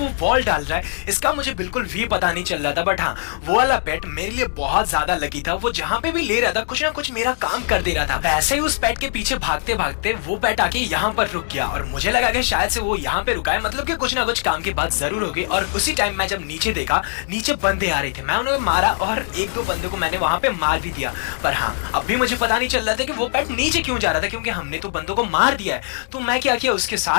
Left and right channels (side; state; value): right; silent; digital silence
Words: बॉल डाल रहा है, इसका मुझे बिल्कुल भी पता नहीं चल रहा था। बट हाँ, वो वाला पेट मेरे लिए बहुत ज्यादा लकी था, वो जहाँ पे भी ले रहा था कुछ ना कुछ मेरा काम कर दे रहा था। वैसे ही उस पेट के पीछे भागते भागते वो पेट आके यहाँ पर रुक गया, और मुझे लगा कि शायद से वो यहाँ पे रुका है, मतलब कि कुछ ना कुछ काम की बात जरूर होगी। और उसी टाइम मैं जब नीचे देखा, नीचे बंदे आ रहे थे, मैं उन्हें मारा और एक दो बंदे को मैंने वहां पे मार भी दिया। पर हाँ, अब भी मुझे पता नहीं चल रहा था कि वो पेट नीचे क्यों जा रहा था, क्योंकि हमने तो बंदों को मार दिया है। तो मैं क्या किया, उसके